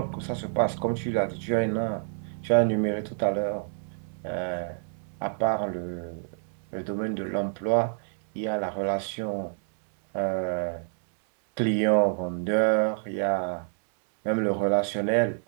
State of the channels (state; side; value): silent; left; digital silence